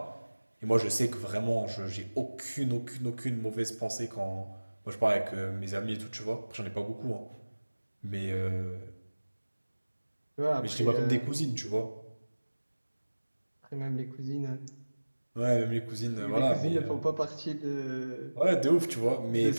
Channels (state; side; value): inverted; both; correlation -1.00